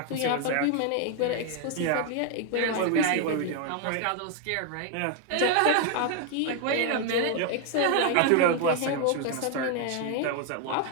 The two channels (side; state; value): both; different; correlation 0.00